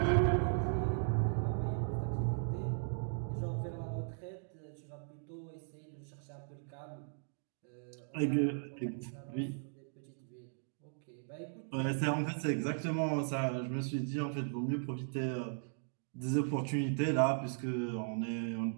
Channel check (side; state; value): left; silent; digital silence